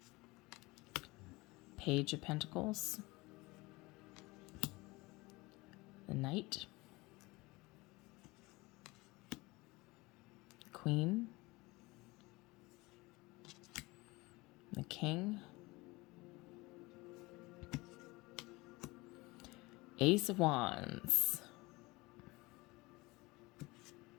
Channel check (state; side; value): quieter; right; 22.7 dB